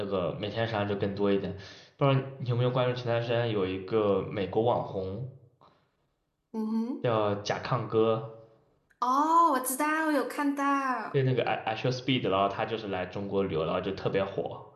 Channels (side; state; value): both; identical; correlation 1.00